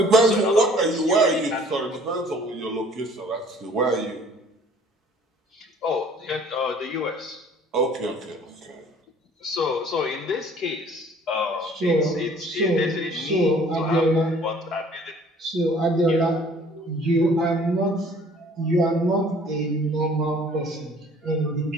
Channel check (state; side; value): normal; both; correlation 0.54